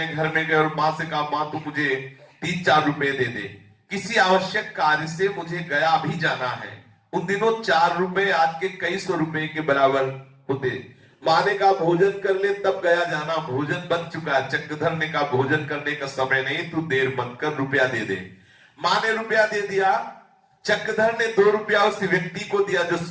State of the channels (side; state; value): both; identical; correlation 1.00